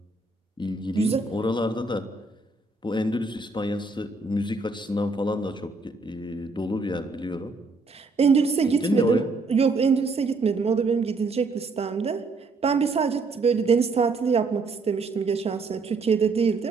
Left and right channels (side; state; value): left; quieter; 3.7 dB